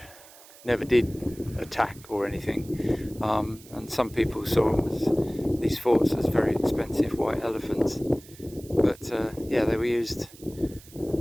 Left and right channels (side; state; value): right; noise; hiss, 22 dB below the sound